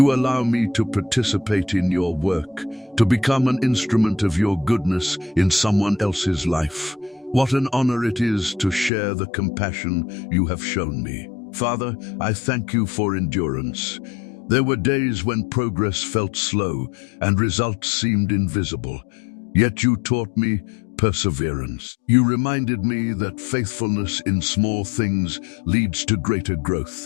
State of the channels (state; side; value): drops out; right; at 8.9 s